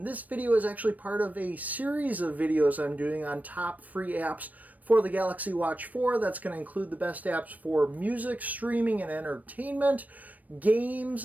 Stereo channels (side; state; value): left; late; 0.076 ms